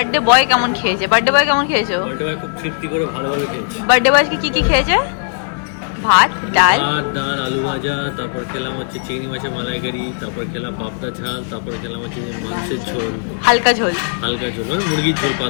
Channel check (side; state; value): right; silent; digital silence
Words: বয় কেমন খেয়েছে। বার্থডে বয় কেমন খেয়েছো? খুব তৃপ্তি করে ভালোভাবে খেয়েছি। বার্থডে বয় কি কি খেয়েছে? ভাত, ডাল, ডাল, আলু ভাজা, তারপর খেলাম হচ্ছে চিংড়ি মাছের মালাইকারি, তারপর খেলাম পাবদা ঝাল, তারপর খেলাম হচ্ছে মাংসের ঝোল, হালকা ঝোল, হালকা ঝোল মানে মুরগির ঝোল,